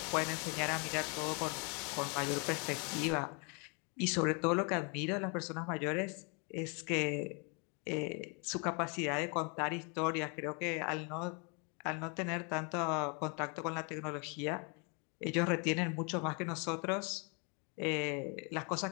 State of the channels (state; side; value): quieter; right; 35.2 dB